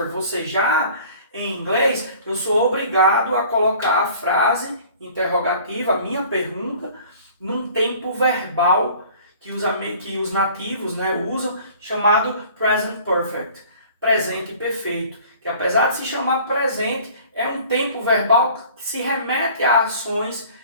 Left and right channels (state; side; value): inverted; both; correlation -0.48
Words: você já, em inglês, eu sou obrigado a colocar a frase interrogativa, a minha pergunta, num tempo verbal que os nativos, né, usam, chamado present perfect, presente perfeito, que apesar de se chamar presente, é um tempo verbal que se remete a ações